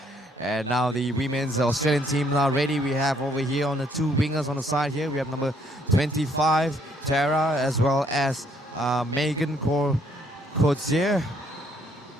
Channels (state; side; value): normal; both; correlation 0.68